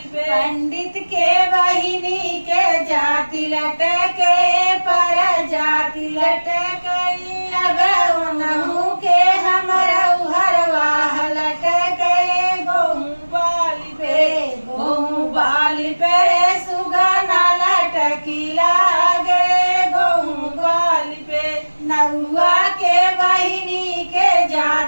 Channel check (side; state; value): both; inverted; correlation -1.00